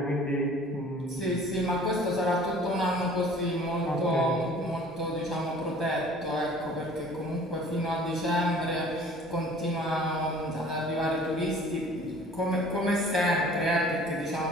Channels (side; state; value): both; normal; correlation 0.50